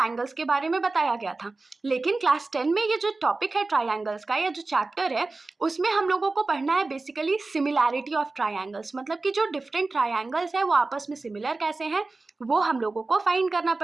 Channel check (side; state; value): left; quieter; 3.5 dB